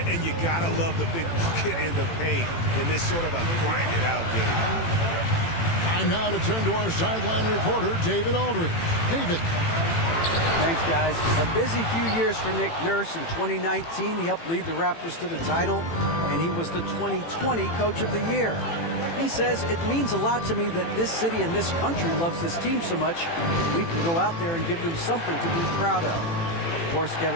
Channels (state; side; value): late; right; 18 ms